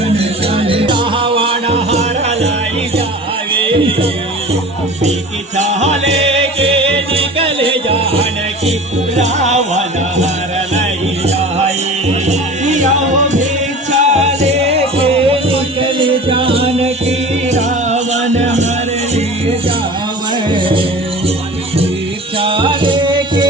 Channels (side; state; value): both; normal; correlation 0.38